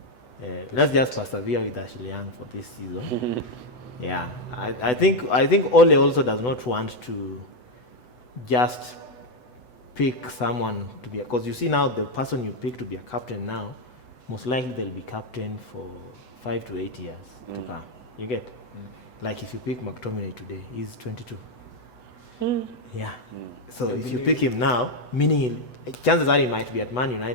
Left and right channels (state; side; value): late; right; 8.0 ms